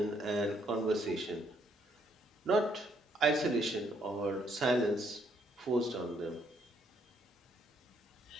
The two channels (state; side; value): normal; both; correlation 0.71